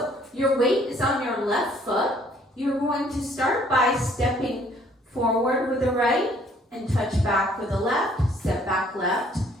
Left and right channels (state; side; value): normal; both; correlation 0.61